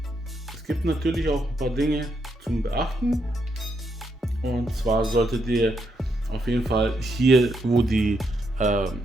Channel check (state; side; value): normal; both; correlation 0.79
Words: Es gibt natürlich auch ein paar Dinge zum Beachten. Und zwar solltet ihr auf jeden Fall hier, wo